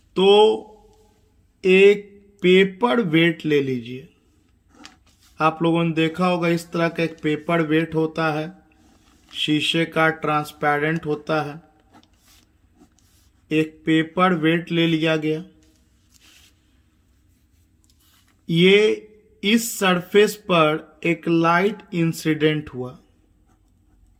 तो एक पेपर वेट ले लीजिए। आप लोगों ने देखा होगा इस तरह का एक पेपर वेट होता है, शीशे का ट्रांसपेरेंट होता है। एक पेपर वेट ले लिया गया, ये इस सरफेस पर एक लाइट इंसिडेंट हुआ,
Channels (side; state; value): both; identical; correlation 1.00